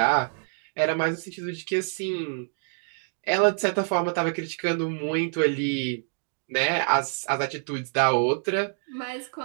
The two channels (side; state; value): left; silent; 60 dB below the other